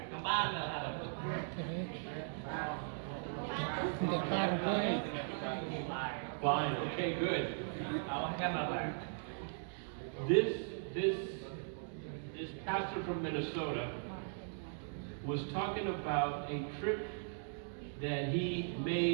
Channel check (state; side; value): silent; left; digital silence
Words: cầm ban là Fine. Okay, good. This pastor from Minnesota was talking about a trip that he